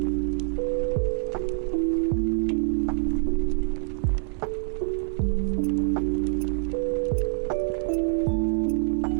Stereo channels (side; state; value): left; silent; 61 dB below the other